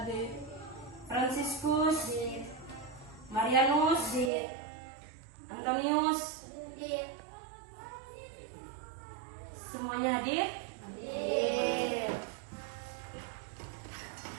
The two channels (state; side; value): drops out; left; at 4.3 s